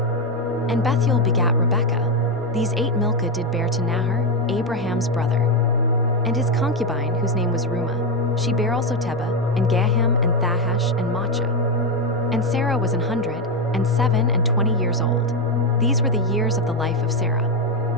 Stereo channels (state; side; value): normal; both; correlation 0.07